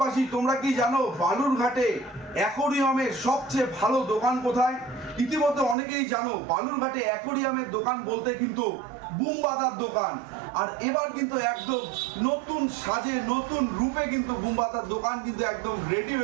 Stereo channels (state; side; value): drops out; left; at 5.8 s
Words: তোমরা কি জানো বালুরঘাটে অ্যাকোরিয়ামের সবচেয়ে ভালো দোকান কোথায়? ইতিমধ্যে অনেকেই জানো বালুরঘাটে অ্যাকোরিয়ামের দোকান বলতে কিন্তু বুম বাঁধার দোকান। আর এবার কিন্তু একদম নতুন সাজে নতুন রূপে কিন্তু বুম বাঁধার দোকান কিন্তু একদম রেডি